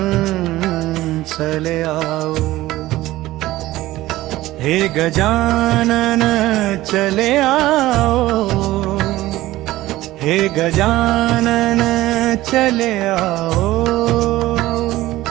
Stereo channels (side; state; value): left; quieter; 16.6 dB